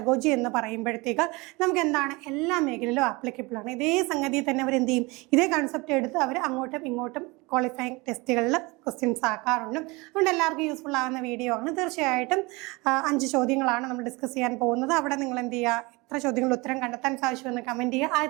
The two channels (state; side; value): quieter; left; 25.0 dB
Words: എന്ന് പറയുമ്പോഴത്തേക്ക് നമുക്ക് എന്താണ് എല്ലാ മേഖലയിലും ആപ്ലിക്കബിൾ ആണ്. ഇതേ സംഗതി തന്നെ അവർ എന്ത് ചെയ്യും, ഇതേ കൺസെപ്റ്റ് എടുത്ത് അവർ അങ്ങോട്ടും ഇങ്ങോട്ടും ക്വാളിഫയിങ് ടെസ്റ്റുകളിൽ ക്വസ്റ്റ്യൻസ് ആക്കാറുണ്ട്. അതുകൊണ്ട് എല്ലാവർക്കും യൂസ്ഫുൾ ആകുന്ന വീഡിയോ ആണ്. തീർച്ചയായിട്ടും 5 ചോദ്യങ്ങളാണ് നമ്മൾ ഡിസ്കസ് ചെയ്യാൻ പോകുന്നത്. അവിടെ നിങ്ങൾ എന്ത് ചെയ്യുക, എത്ര ചോദ്യങ്ങൾ ഉത്തരം കണ്ടെത്താൻ സാധിച്ചുവെന്ന് കമന്റ് ചെയ്യുക.